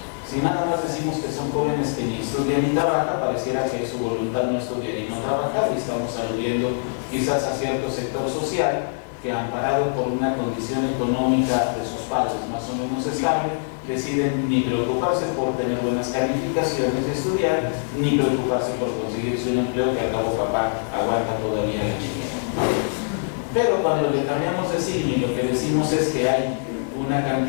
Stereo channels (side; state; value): right; silent; digital silence